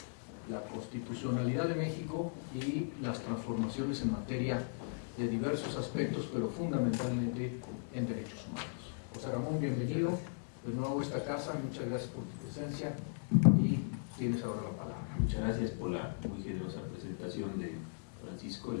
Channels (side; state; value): right; silent; digital silence